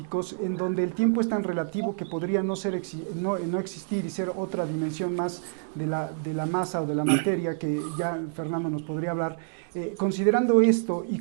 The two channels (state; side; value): silent; left; digital silence